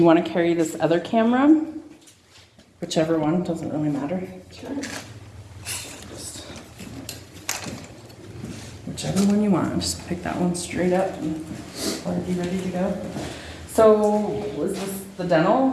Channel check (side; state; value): both; identical; correlation 1.00